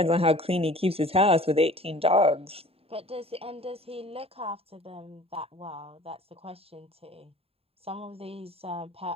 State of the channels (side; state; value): left; late; 0.28 ms